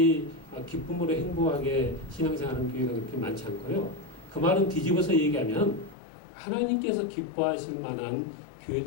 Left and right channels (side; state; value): right; drops out; at 6.0 s